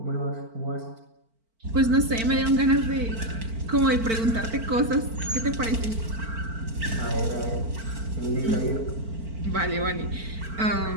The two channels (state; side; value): late; left; 4.5 ms